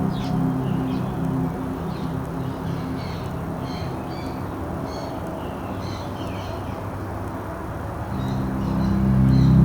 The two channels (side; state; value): both; identical; correlation 1.00